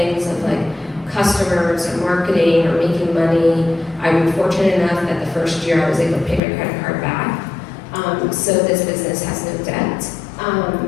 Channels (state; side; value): drops out; right; at 6.4 s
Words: of like customers or marketing or making money. I'm fortunate enough that the first year I was able to pay my credit card back. So this business has no debt.